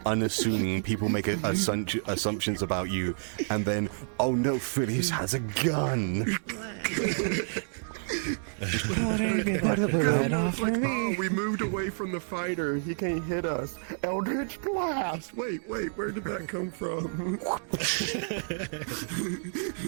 unassuming. People make assumptions about you, and then, oh no, Phileas has a gun. We moved away from the fighter. He can't hit us. Eldritch Blast. Wait, where did that come from?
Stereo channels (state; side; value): silent; left; digital silence